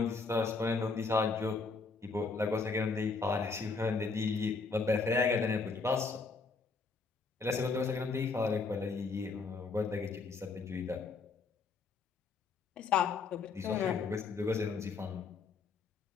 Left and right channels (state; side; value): quieter; right; 4.4 dB